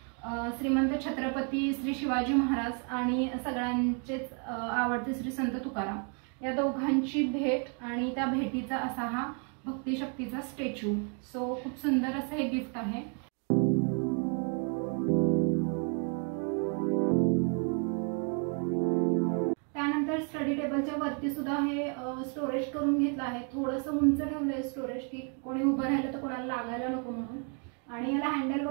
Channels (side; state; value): left; quieter; 39.5 dB